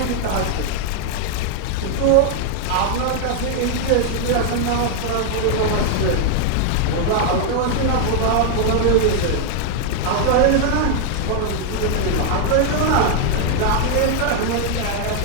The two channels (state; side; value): different; both; correlation 0.00